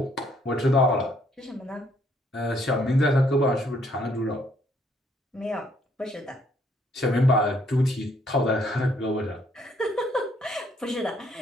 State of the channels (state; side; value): normal; both; correlation 0.68